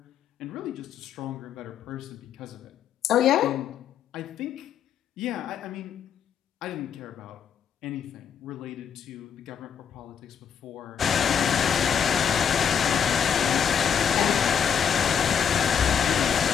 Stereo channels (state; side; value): quieter; right; 7.9 dB